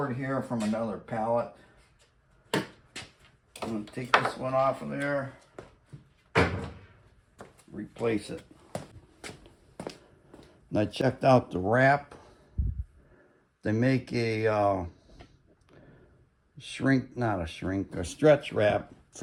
here from another pallet. I'm going to take this one off of there, replace it. And I checked out the wrap. They make a stretch wrap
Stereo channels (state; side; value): identical; both; correlation 1.00